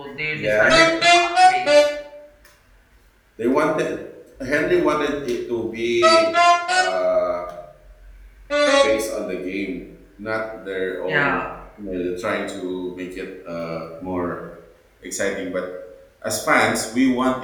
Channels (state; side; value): identical; both; correlation 1.00